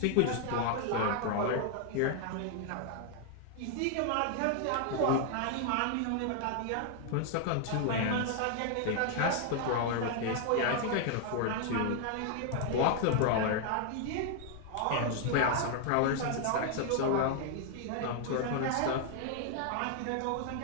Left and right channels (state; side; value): different; both; correlation 0.00